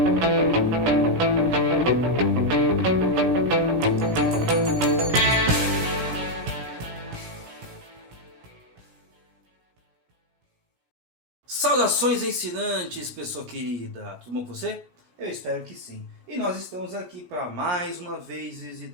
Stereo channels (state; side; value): late; left; 17 ms